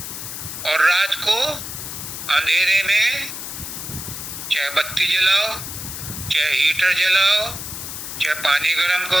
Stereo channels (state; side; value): noise; left; hiss, 8 dB below the sound